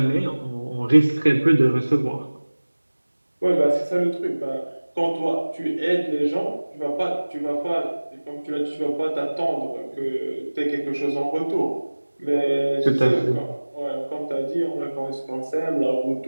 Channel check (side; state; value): both; inverted; correlation -1.00